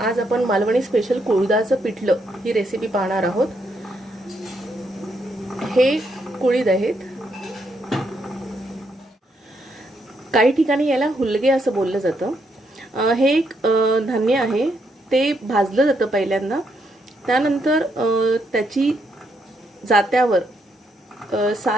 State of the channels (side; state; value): both; normal; correlation 0.77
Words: आज आपण मालवणी स्पेशल कुळीदाचं पिठलं ही रेसिपी पाहणार आहोत. हे कुळीद आहेत. काही ठिकाणी याला हुलगे असं बोललं जातं. हे एक धान्य आहे. ते भाजलं जातं पहिल्यांदा, त्यानंतर त्याची जात्यावर